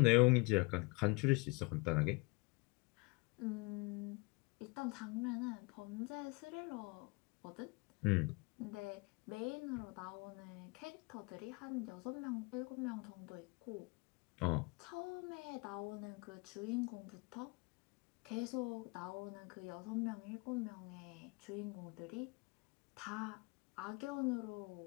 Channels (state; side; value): quieter; right; 27.8 dB